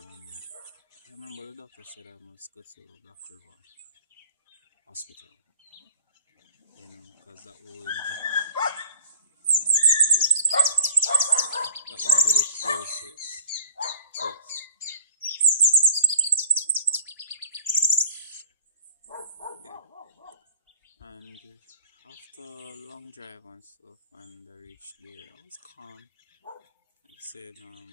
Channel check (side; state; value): both; inverted; correlation -0.44